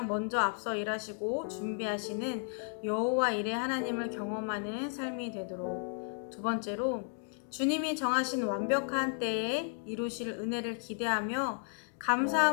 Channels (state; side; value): silent; right; 55 dB below the other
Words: 먼저 앞서 일하시고 준비하시는 여호와 일의 하나님을 경험하는 삶이 되도록, 두 번째로 주님이 정하신 완벽한 때에 이루실 은혜를 기대하며